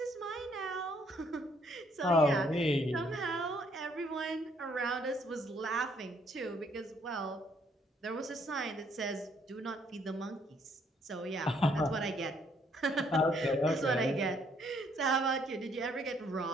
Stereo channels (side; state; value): both; normal; correlation 0.67